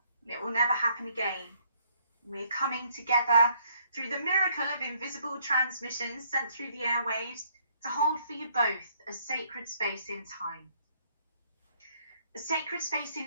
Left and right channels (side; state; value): both; inverted; correlation -0.66